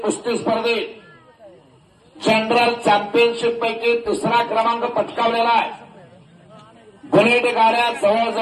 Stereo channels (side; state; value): both; identical; correlation 1.00